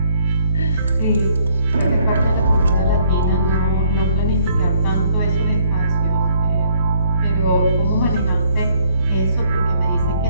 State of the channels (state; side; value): inverted; both; correlation -0.65